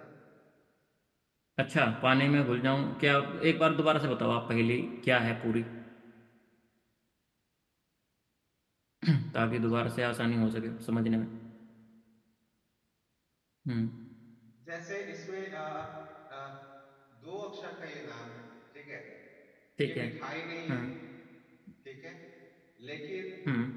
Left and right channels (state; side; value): identical; both; correlation 1.00